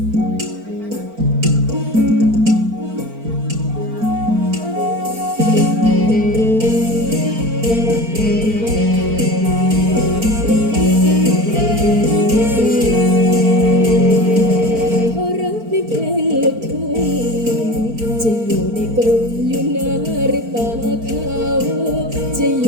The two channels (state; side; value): late; left; 4.4 ms